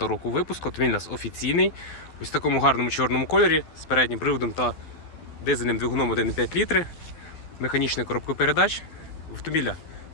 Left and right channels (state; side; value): late; right; 12 ms